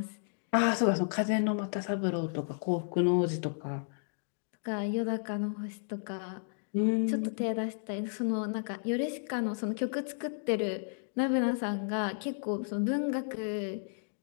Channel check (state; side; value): silent; right; digital silence